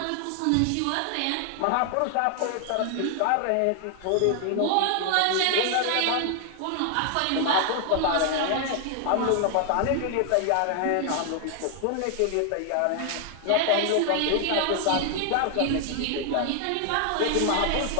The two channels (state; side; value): different; both; correlation 0.00